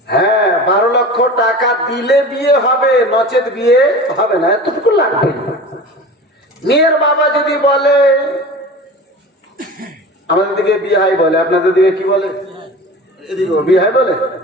হ্যাঁ, 12 লক্ষ টাকা দিলে বিয়ে হবে, নচেত বিয়ে হবে না, এতটুকু লাগবে। মেয়ের বাবা যদি বলে, আমাদের দিকে বিহাই বলে, আপনাদের দিকে কি বলে? এদিকে বিহাই বলে।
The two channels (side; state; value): both; normal; correlation 0.35